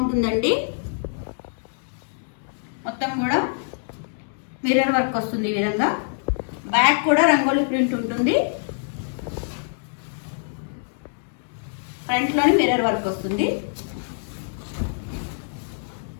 మొత్తం కూడా మిర్రర్ వర్క్ వస్తుంది. ఈ విధంగా బ్యాక్ కూడా రంగోలీ ప్రింట్ ఉంటుంది. ఫ్రంట్లోని మిర్రర్ వర్క్ వస్తుంది.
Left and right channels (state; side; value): silent; right; digital silence